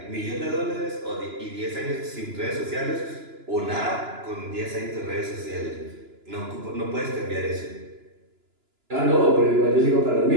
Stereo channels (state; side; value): late; left; 2.9 ms